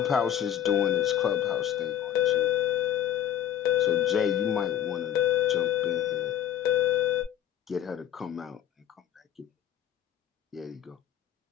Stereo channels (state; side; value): quieter; right; 10.6 dB